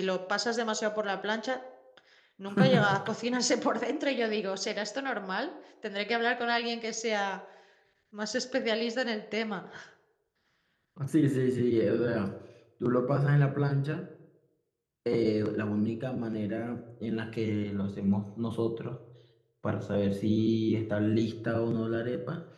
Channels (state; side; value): identical; both; correlation 1.00